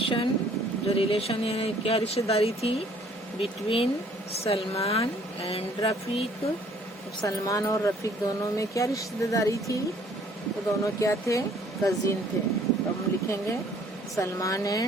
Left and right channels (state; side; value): normal; both; correlation 0.59